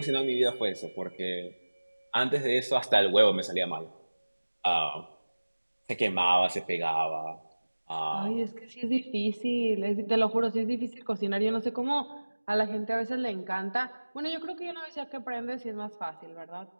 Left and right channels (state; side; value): inverted; both; correlation -1.00